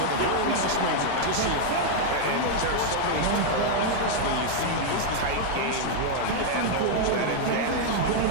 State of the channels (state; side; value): different; both; correlation -0.01